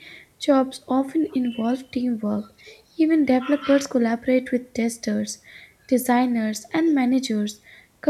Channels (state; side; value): identical; both; correlation 1.00